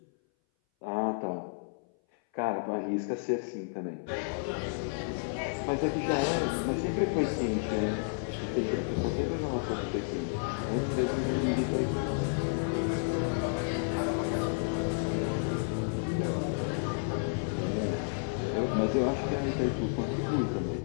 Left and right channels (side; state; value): right; silent; 57 dB below the other